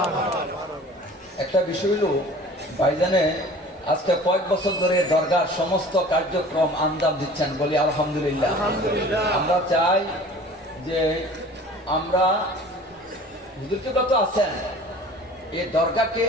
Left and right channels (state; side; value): normal; both; correlation 0.45